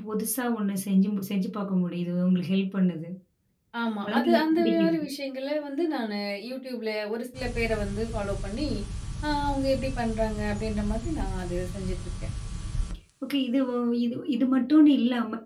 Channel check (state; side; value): identical; both; correlation 1.00